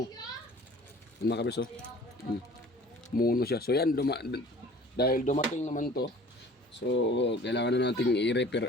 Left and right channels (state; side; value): normal; both; correlation 0.48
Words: Yan mga kabiso. Mono siya. So, yan, dahil dumating naman to, so, kailangan na natin